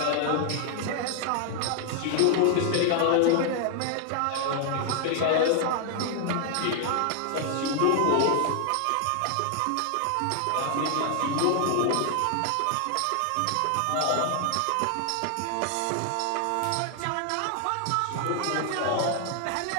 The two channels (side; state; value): both; different; correlation 0.00